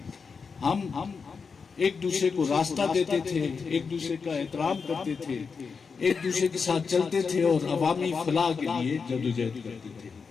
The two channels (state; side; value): quieter; right; 5.4 dB